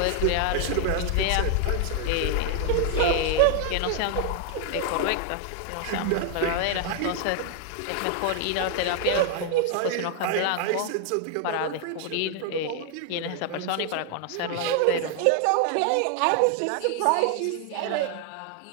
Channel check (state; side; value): different; both; correlation 0.00